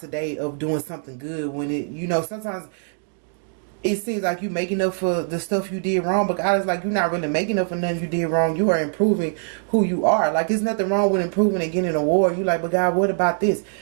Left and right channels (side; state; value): left; silent; digital silence